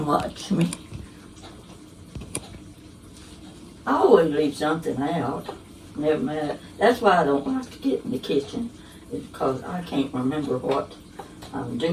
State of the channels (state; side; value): identical; both; correlation 1.00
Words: watch me. I always leave something out. Never mind. That's why I don't like to get in the kitchen. It's because I can't remember what I'm